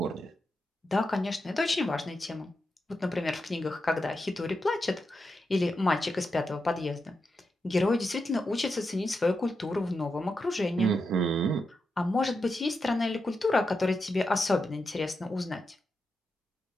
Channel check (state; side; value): normal; both; correlation 0.87